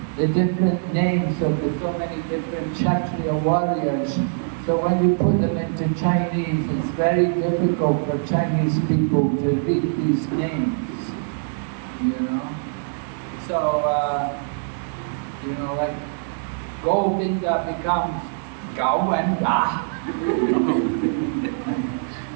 the different names of the so many different Kshatriya warriors. So when you put them into Chinese, it's very difficult for Chinese people to read these names, So, like Govinda becomes Govinda.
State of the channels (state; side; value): silent; left; 63 dB below the other